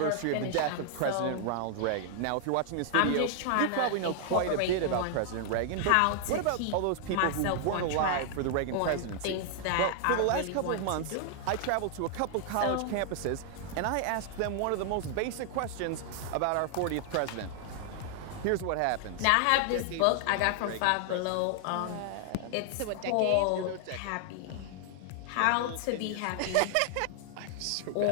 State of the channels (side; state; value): both; different; correlation 0.00